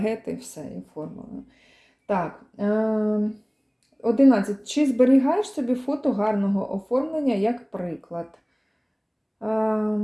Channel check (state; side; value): identical; both; correlation 1.00